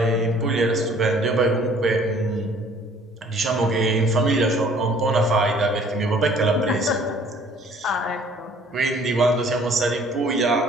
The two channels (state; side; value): normal; both; correlation 0.56